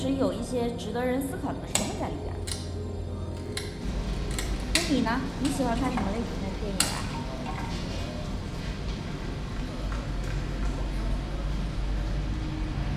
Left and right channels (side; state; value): both; identical; correlation 1.00